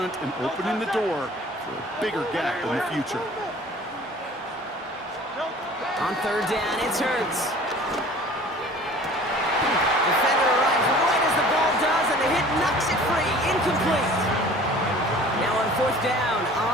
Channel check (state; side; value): normal; both; correlation 0.47